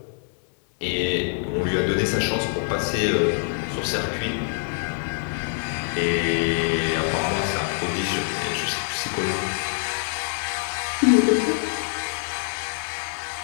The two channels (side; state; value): right; silent; 62 dB below the other